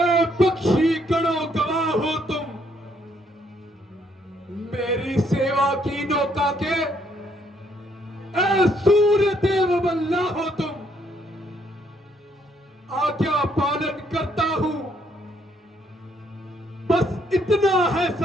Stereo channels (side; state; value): both; normal; correlation 0.70